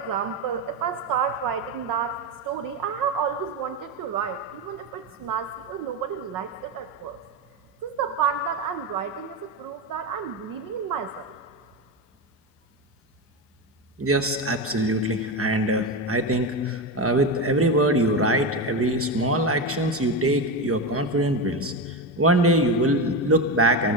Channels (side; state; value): both; normal; correlation 0.16